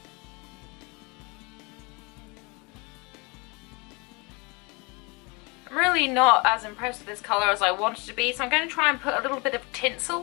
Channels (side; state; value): right; quieter; 29.0 dB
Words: I'm really not as impressed with this colour as I wanted to be, so I'm going to try and put a little bit of